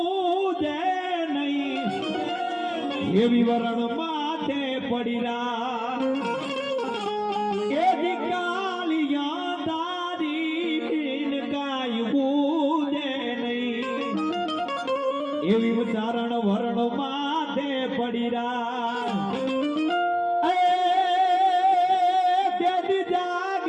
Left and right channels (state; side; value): identical; both; correlation 1.00